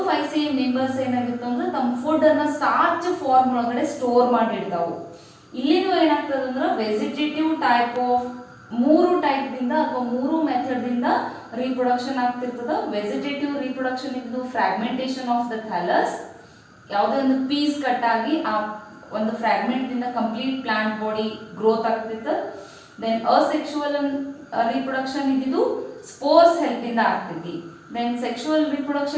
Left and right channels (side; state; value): both; identical; correlation 1.00